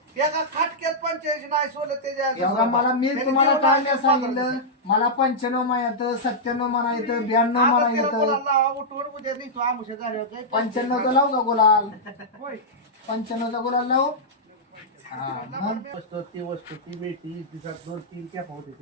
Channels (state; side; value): normal; both; correlation -0.09